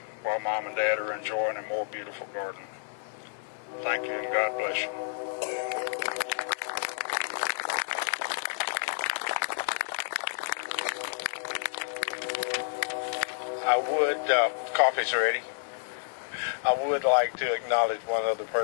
while Mom and Dad are enjoying a more beautiful garden. Thank you, and God bless you. Coffee's ready. I would like to acknowledge one other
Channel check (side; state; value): right; silent; 58 dB below the other